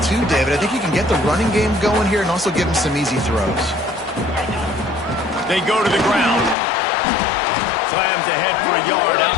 too, David. I think you can get the running game going here and also give him some easy throws. They go to the ground. Slams ahead for a yard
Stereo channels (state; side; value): drops out; right; at 6.6 s